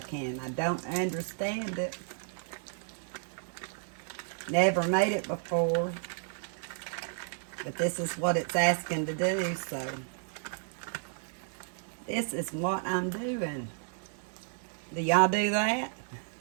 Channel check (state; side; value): silent; left; 56 dB below the other